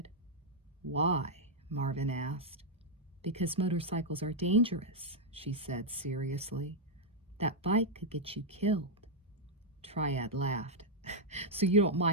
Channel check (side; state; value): both; normal; correlation -0.03